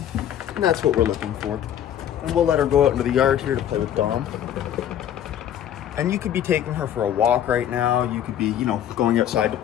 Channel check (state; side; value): quieter; right; 10.4 dB